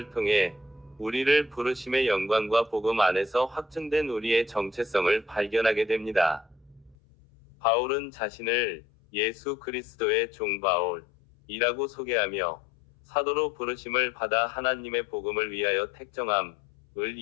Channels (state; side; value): drops out; right; at 7.0 s